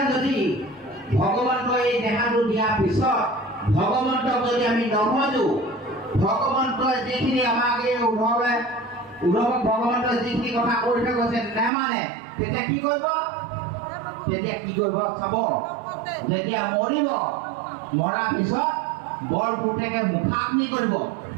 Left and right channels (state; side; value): drops out; left; at 11.7 s